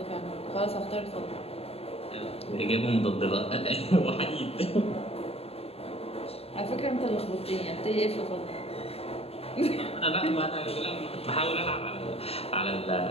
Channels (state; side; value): late; right; 0.29 ms